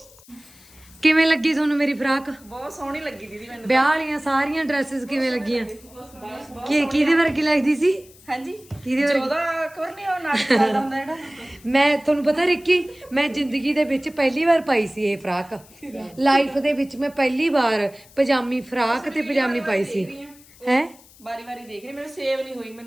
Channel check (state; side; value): noise; left; hiss, 25 dB below the sound